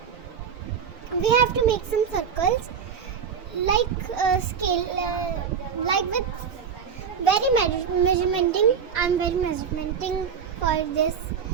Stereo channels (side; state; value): left; quieter; 7.0 dB